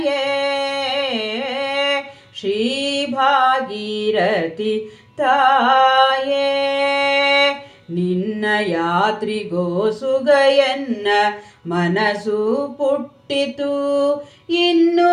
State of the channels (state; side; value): identical; both; correlation 1.00